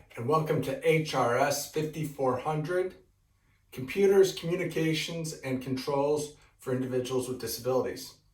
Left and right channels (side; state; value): both; identical; correlation 1.00